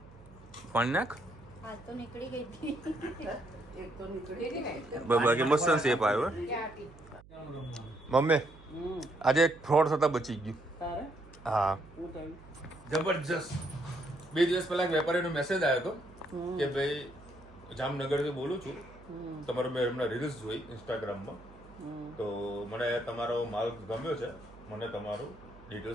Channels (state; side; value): noise; right; hum, 22 dB below the sound